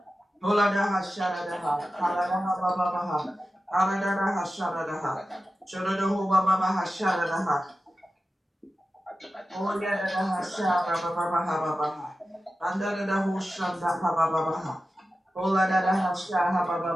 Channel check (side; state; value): both; normal; correlation 0.93